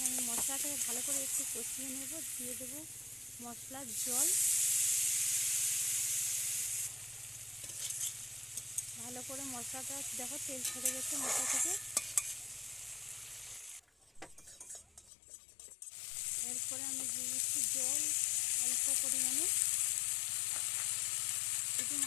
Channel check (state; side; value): drops out; right; at 15.1 s